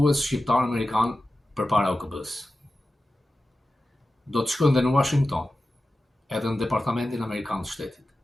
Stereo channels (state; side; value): normal; both; correlation 0.94